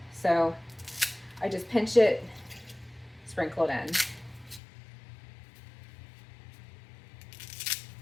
So I just pinch it, sprinkle it in.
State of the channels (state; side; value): drops out; right; at 4.6 s